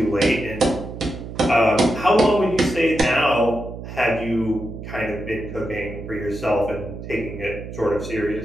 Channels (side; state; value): right; noise; hum, 10 dB below the sound